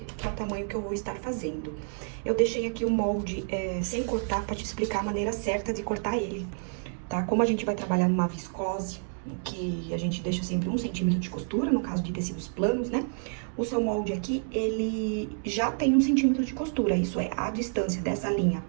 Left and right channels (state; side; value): silent; left; 59 dB below the other